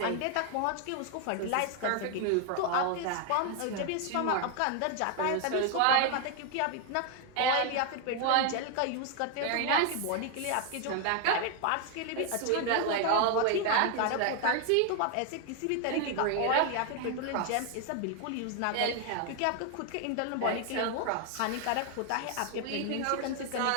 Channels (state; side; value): different; both; correlation 0.01